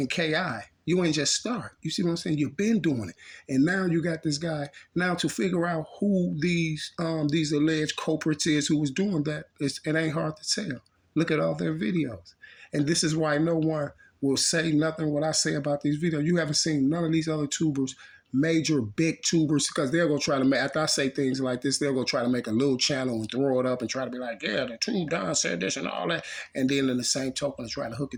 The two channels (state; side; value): identical; both; correlation 1.00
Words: Ki. You ain't just start. You see what I'm saying? You've been doing it. And now you got this guy. Now to figure out who these alleged culprits is who was doing that, it ain't hard to tell. Look at all their videos. And this is why no one will say nothing what I say about these videos. You haven't seen none of these other tubers, major big tubers, because they're gonna try to make, after I say things like this, they're gonna try to make a little channel and throw it up and try to be like, yeah, the tube Don said this and all that, and then in the same token try to hook